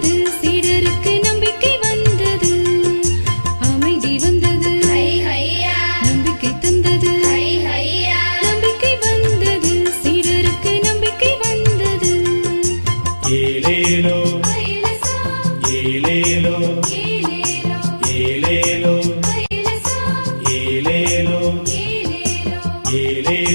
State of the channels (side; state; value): both; inverted; correlation -1.00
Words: சீடருக்கு நம்பிக்கை வந்தது. அமைதி வந்தது, நம்பிக்கை தந்தது. நம்பிக்கை வந்தது, சீடருக்கு நம்பிக்கை வந்தது. ஏலேலோ ஐலசா ஏலேலோ ஏலேலோ